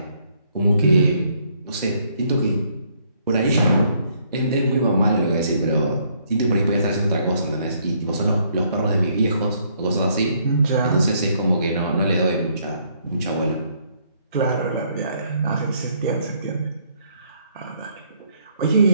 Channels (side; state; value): both; inverted; correlation -0.69